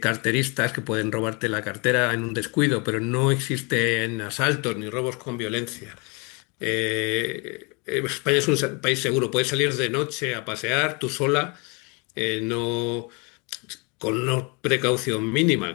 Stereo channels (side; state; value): right; quieter; 31.3 dB